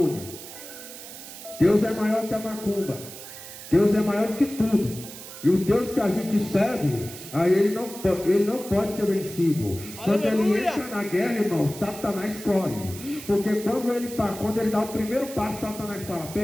Deus é maior que a macumba. Deus é maior que tudo. E o Deus que a gente serve, aí ele não pode ser vencido. Quando ele entra na guerra, irmão, Satanás corre. Porque quando ele dá o primeiro passo, Satanás fala:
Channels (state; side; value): noise; right; hiss, 13 dB below the sound